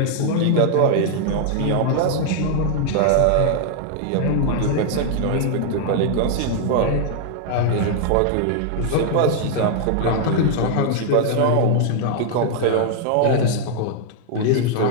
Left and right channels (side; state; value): both; different; correlation 0.00